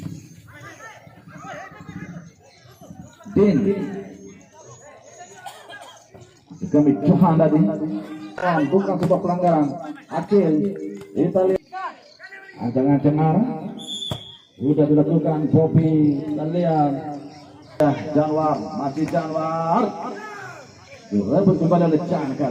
Din kami Johan tadi. Bukan sebuah pelanggaran. Akil kita lihat ancang-ancang arah sudah dilakukan. Bobby dan lihat Janwar. Masih Janwar direbut kembali oleh Chan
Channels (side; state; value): both; identical; correlation 1.00